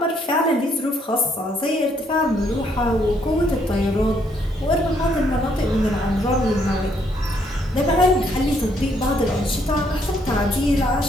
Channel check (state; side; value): normal; both; correlation 0.70